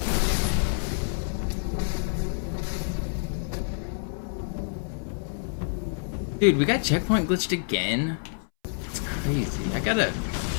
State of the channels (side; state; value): right; silent; 60 dB below the other